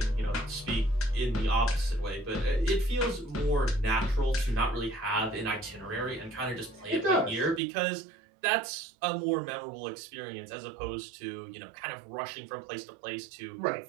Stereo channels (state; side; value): drops out; left; at 7.6 s